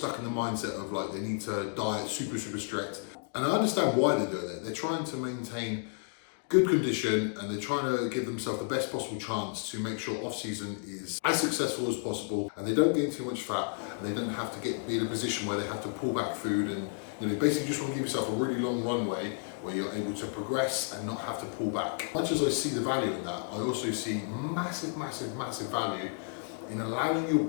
in the mindset of like they need to diet super strict. And I understand why they're doing it. They're trying to maintain good condition, and they're trying to give themselves the best possible chance to make sure off-season is as successful as possible, and they don't gain too much fat, and they don't have to be in a position where they have to pull back food, and basically just want to give yourself a really long runway where you're able to progress and not have to pull back. Much as I see the value in that, I also see massive value in allowing your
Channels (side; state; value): right; silent; 57 dB below the other